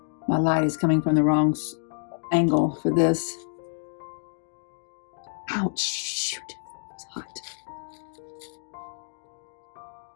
My light is coming from the wrong angle for this. Ouch, shoot. hot.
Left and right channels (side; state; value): right; silent; digital silence